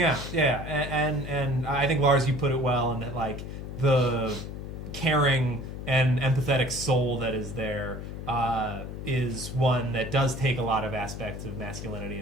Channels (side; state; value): left; noise; hum, 8 dB below the sound